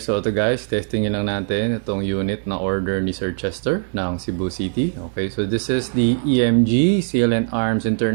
So ito guys, testingin lang natin itong unit na order ni Sir Chester ng Cebu City. Okay, so this is the EMG Seal and Arms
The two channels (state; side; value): silent; left; digital silence